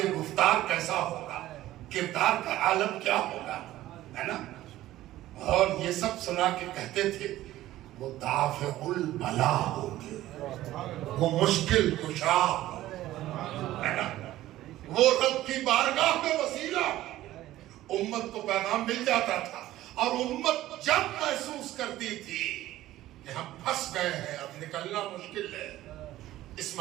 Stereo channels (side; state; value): left; quieter; 15.0 dB